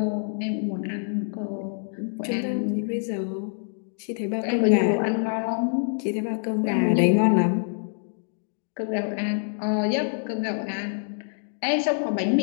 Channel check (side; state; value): right; silent; 61 dB below the other